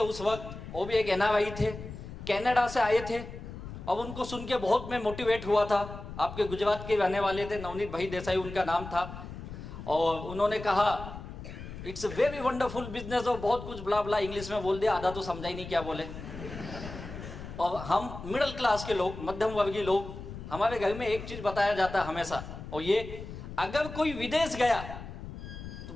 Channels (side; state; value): left; noise; rumble, 11 dB below the sound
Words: उस वक्त, वो भी एक NRI थे, कनाडा से आए थे। और उनको सुन के बहुत मैं मोटिवेट हुआ था। आपके गुजरात के रहने वाले थे, नवनीत भाई देसाई उनका नाम था, और उन्होंने कहा it's a very wonderful business, और बहुत कुछ ब्ला ब्ला इंग्लिश में बोल दिया, आधा तो समझा ही नहीं क्या बोले। और हम मिडिल क्लास के लोग, मध्यम वर्गीय लोग, हमारे घर में एक चीज बताया जाता है हमेशा, और ये, अगर कोई विदेश गया तो